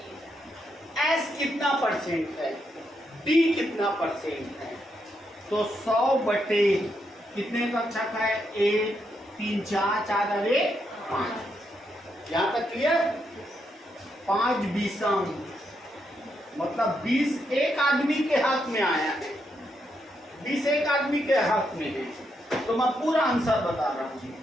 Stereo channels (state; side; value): normal; both; correlation 0.80